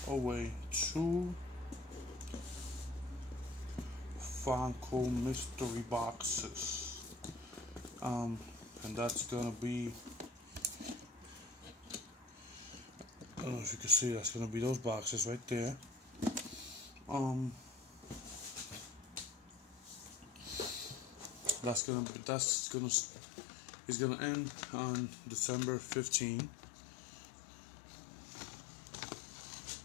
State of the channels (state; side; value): drops out; right; at 21.8 s